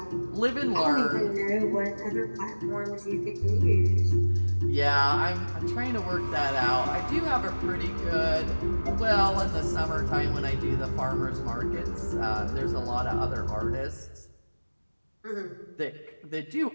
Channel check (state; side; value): inverted; both; correlation -1.00